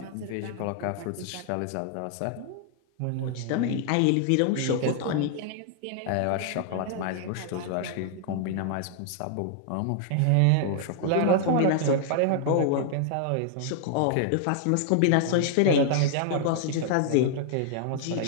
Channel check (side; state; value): both; different; correlation -0.01